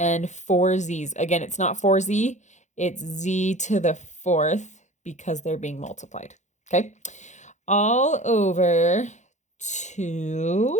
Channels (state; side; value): late; right; 0.34 ms